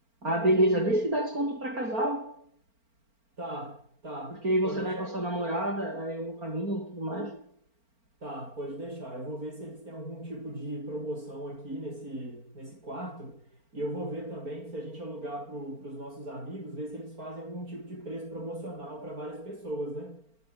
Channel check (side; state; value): left; late; 4.4 ms